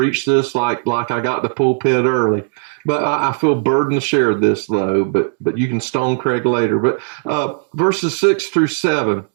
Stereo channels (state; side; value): silent; left; digital silence